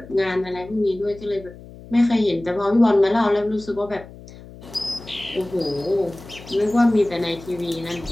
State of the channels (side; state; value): left; noise; hum, 18 dB below the sound